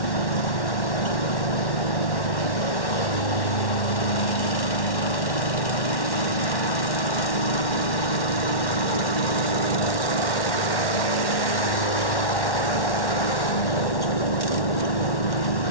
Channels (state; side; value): late; right; 1.1 ms